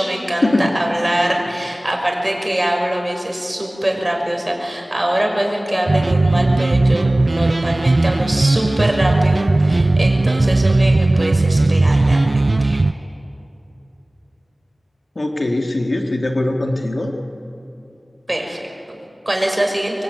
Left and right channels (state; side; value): normal; both; correlation 0.98